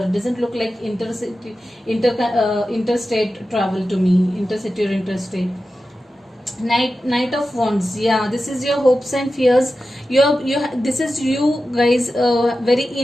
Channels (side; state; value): both; normal; correlation 0.93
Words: Doesn't look like interstate travel to me, intercity or interstate. Knight of Wands. Yeah, this is your hopes and fears. This is you guys, very